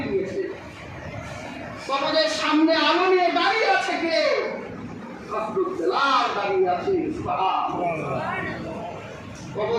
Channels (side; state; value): both; identical; correlation 1.00